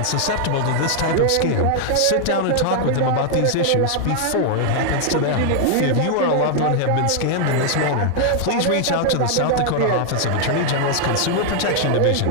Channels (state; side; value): different; both; correlation 0.00